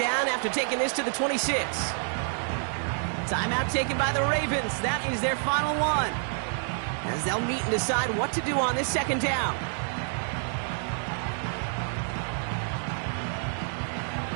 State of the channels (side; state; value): left; silent; 57 dB below the other